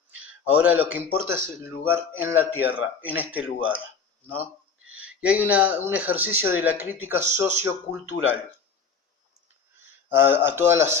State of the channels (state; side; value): quieter; right; 5.4 dB